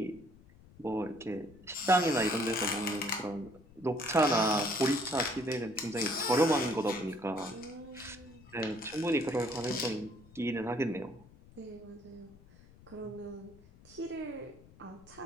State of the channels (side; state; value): left; noise; rumble, 23 dB below the sound